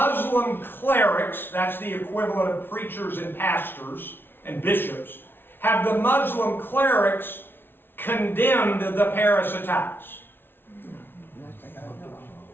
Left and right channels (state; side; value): late; right; 0.11 ms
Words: clerics, that's the equivalent of preachers and pastors and bishops, have the Muslim clerics condemned the Paris attacks?